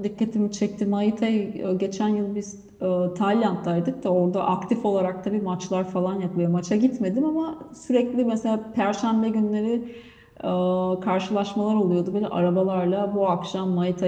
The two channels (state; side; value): identical; both; correlation 1.00